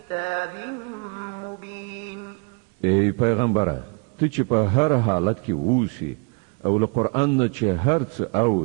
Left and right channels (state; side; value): quieter; left; 33.8 dB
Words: مبين ای پیغمبره ته چې په هر حالت کې اوسې او له قرآن نه چې هر څه